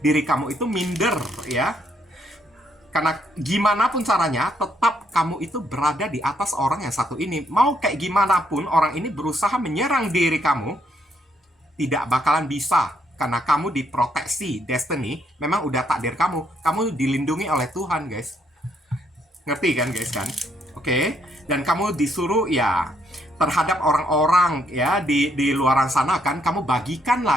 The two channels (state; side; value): normal; both; correlation 0.72